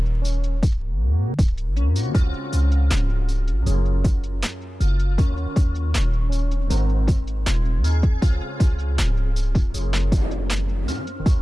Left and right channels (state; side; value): normal; both; correlation 0.97